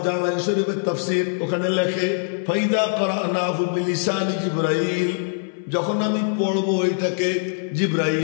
জালাল শরীফের তাফসীর ওখানে লেখে ফাইদা করানাহু বিলিসানি জিবরাইল, যখন আমি পড়ব এটাকে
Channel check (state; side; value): silent; right; 59 dB below the other